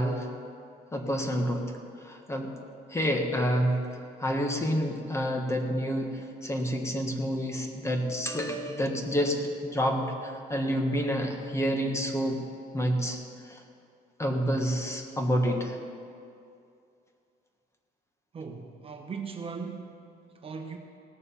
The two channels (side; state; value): both; normal; correlation 0.73